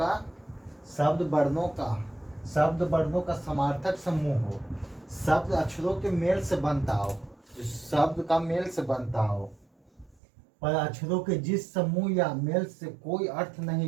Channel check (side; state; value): left; drops out; at 10.2 s